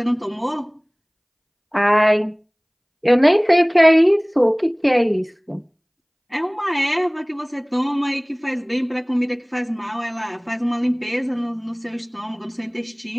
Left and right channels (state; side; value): identical; both; correlation 1.00